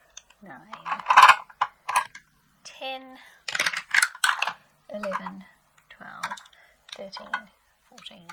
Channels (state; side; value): identical; both; correlation 1.00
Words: 9, 10, 11, 12, 13, 14,